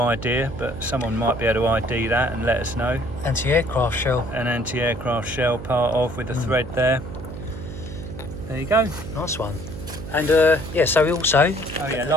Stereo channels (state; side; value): noise; right; hum, 10 dB below the sound